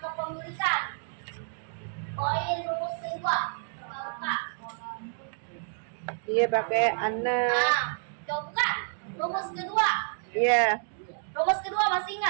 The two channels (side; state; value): left; silent; 58 dB below the other